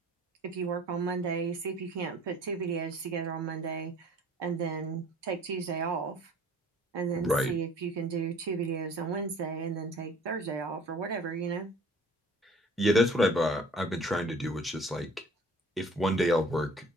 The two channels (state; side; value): normal; both; correlation 0.51